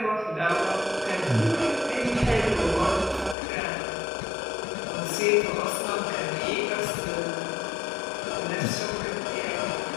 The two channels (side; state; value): right; drops out; at 3.4 s